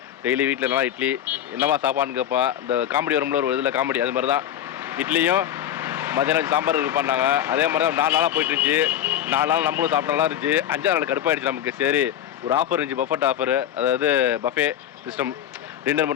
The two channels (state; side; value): quieter; right; 10.7 dB